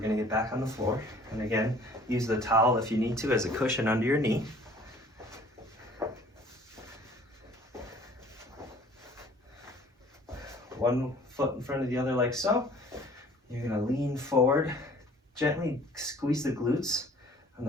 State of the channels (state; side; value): normal; both; correlation 0.52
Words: to get back on the floor. And again, use the towel if you need to as a cushion under your knee. One foot in front of the other like so. You're going to lean forward, gently squeeze the glutes on